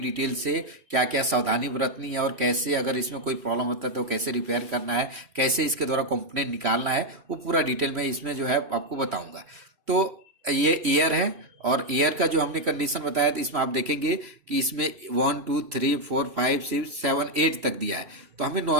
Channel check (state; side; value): late; left; 3.1 ms